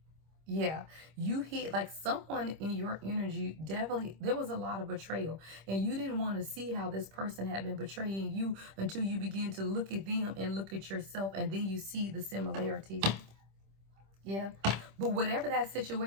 Yeah, you hit like someone in your energy. Definitely, there was a lot of betrayal, and you didn't want to see how this person had been betraying you until you begin to look at them and look at yourself, and then you see the similarities. Yeah. But whatever that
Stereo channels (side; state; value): left; late; 26 ms